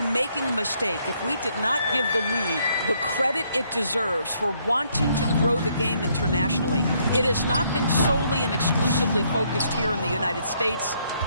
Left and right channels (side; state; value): both; inverted; correlation -0.70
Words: making a mistake if we did not give the league the credit it deserves for wanting to grow the game internationally. It has not been solely and exclusively focused here in the United States.